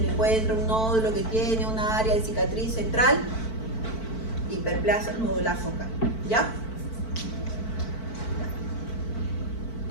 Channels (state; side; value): late; right; 4.5 ms